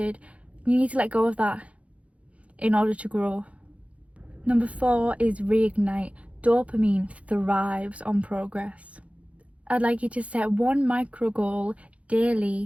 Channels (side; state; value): left; late; 0.064 ms